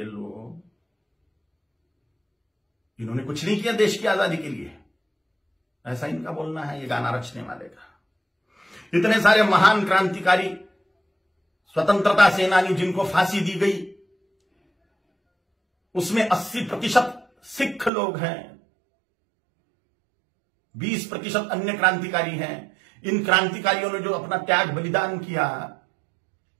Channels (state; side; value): drops out; left; at 17.9 s